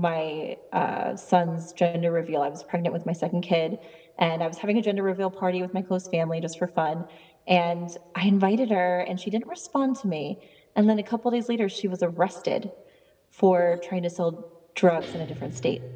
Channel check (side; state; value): both; identical; correlation 1.00